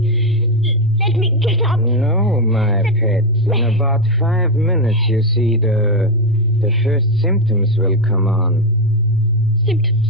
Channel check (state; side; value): normal; both; correlation 0.07